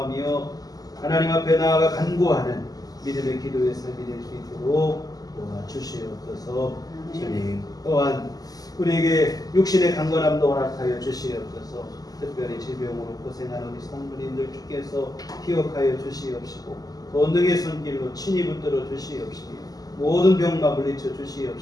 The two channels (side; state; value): right; late; 0.18 ms